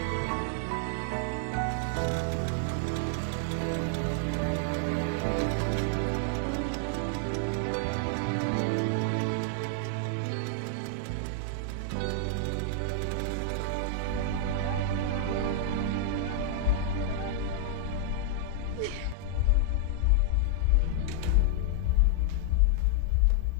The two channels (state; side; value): different; both; correlation 0.00